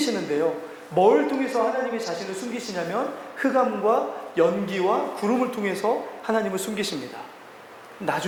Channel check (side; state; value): both; identical; correlation 1.00